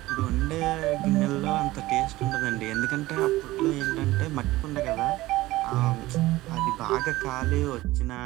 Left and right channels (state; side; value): quieter; left; 17.9 dB